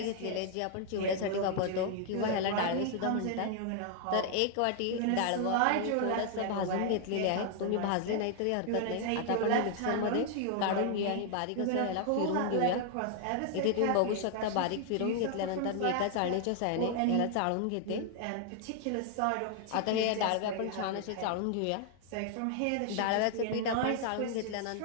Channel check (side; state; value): both; different; correlation 0.00